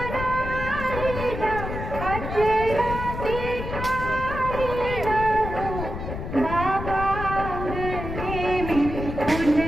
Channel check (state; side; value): noise; left; rumble, 6 dB below the sound